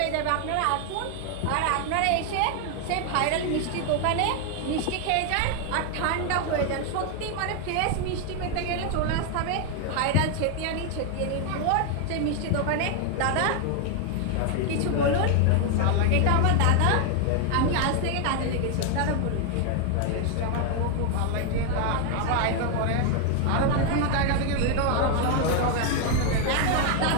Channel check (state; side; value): different; both; correlation 0.01